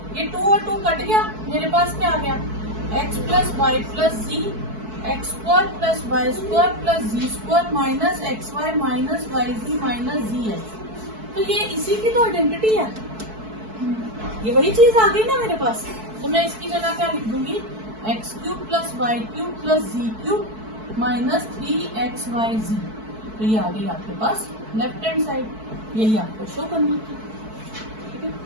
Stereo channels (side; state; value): left; late; 4.6 ms